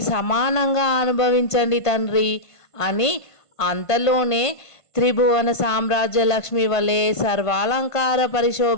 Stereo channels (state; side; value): late; right; 1.5 ms